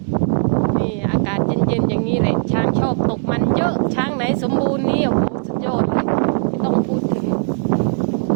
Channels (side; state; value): left; silent; digital silence